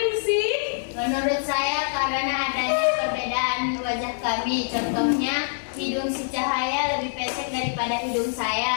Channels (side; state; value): right; silent; digital silence